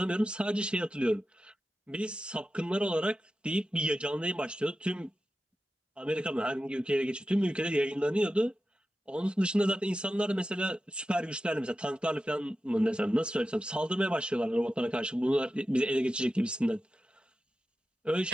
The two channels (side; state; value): both; normal; correlation 0.92